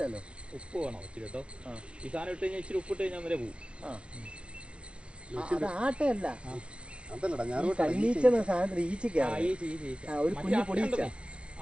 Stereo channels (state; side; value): late; left; 0.060 ms